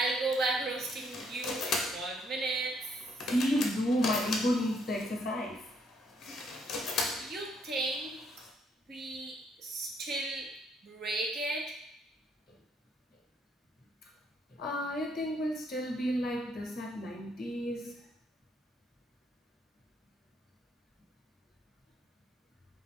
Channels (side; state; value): both; normal; correlation 0.70